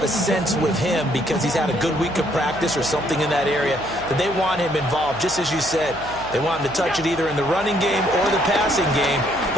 a sense with him because he's had a good week of practice or something in that area that they want him involved. Just as you said, they want him to touch it either in the running game or the passing game,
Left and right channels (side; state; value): right; noise; hum, 15 dB below the sound